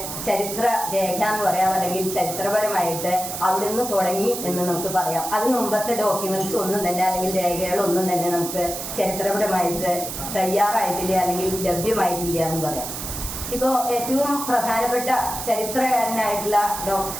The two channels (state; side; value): noise; right; hiss, 7 dB below the sound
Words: ചരിത്ര രേഖ എന്ന് പറയാം, അല്ലെങ്കിൽ ചരിത്രപരമായിട്ട് അവിടുന്ന് തുടങ്ങി എന്ന് നമുക്ക് പറയാം. അതിന് മുമ്പത്തെ ഡോക്യുമെന്റ്സ് ഒന്നും തന്നെ അല്ലെങ്കിൽ രേഖകളൊന്നും തന്നെ നമുക്ക് ചരിത്രപരമായിട്ട് തയ്യാറായിട്ടില്ല അല്ലെങ്കിൽ ലഭ്യമായിട്ടില്ല എന്ന് പറയാം. ഇപ്പോൾ ഏറ്റവും പ്രധാനപ്പെട്ട ചരിത്രകാരനായിട്ടുള്ള